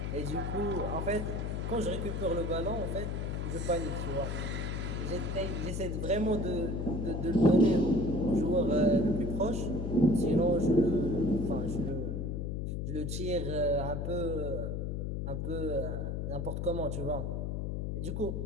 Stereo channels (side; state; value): left; noise; hum, 2 dB below the sound